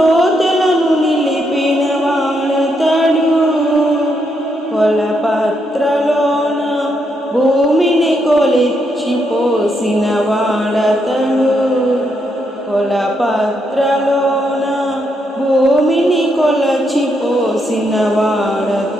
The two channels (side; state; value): both; normal; correlation 0.79